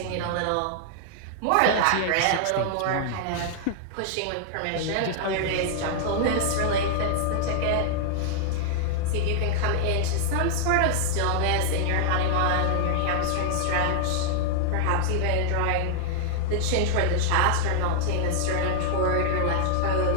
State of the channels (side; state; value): both; different; correlation -0.01